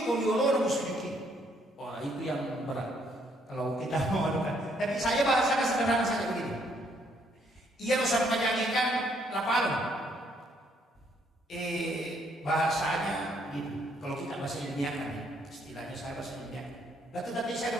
kau diolor mau sujud. Wah, itu yang berat. Kalau kita mau adukan. Tapi saya bahasakan sederhana saja begini. Ia harus menyanyikan lapal. Bahasanya gini. Kalau kita bahasa ilmiahkan, istilahnya saya bahasa ilmiah. Lalu tadi saya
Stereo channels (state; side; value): normal; both; correlation 0.69